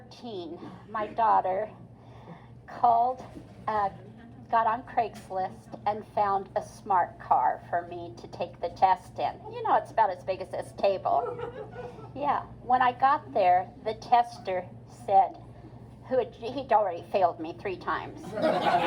my daughter got on Craigslist and found a smart car for me to take the test in. You know, it's about as big as this table. Yeah, when I got there, the tester said, he'd already failed me 3 times.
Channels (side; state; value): both; identical; correlation 1.00